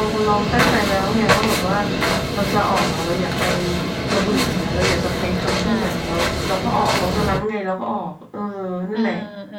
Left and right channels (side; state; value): both; identical; correlation 1.00